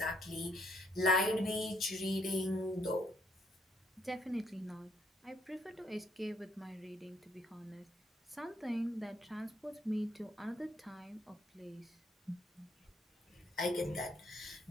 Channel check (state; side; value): normal; both; correlation 0.70